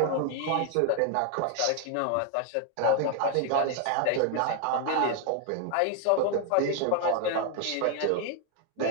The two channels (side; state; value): both; different; correlation 0.00